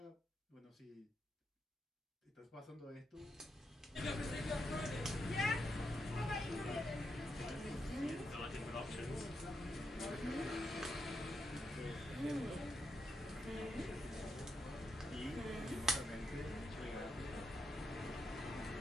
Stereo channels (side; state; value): both; normal; correlation 0.82